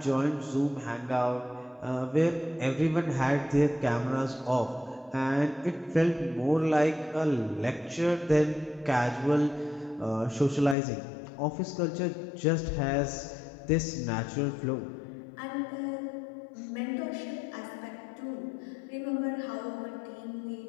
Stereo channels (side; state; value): right; drops out; at 10.8 s